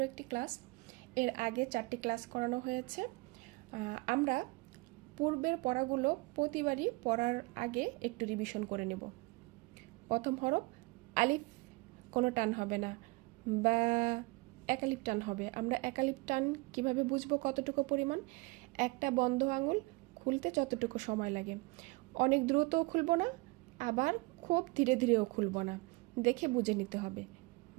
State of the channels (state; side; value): quieter; left; 25.2 dB